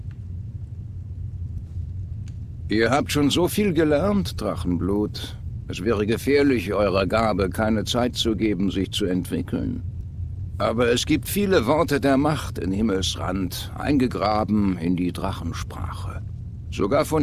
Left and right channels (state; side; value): identical; both; correlation 1.00